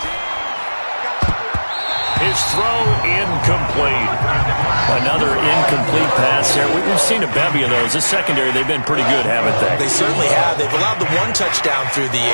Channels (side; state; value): both; inverted; correlation -1.00